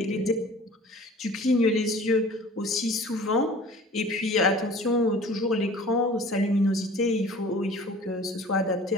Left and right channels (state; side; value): normal; both; correlation 0.46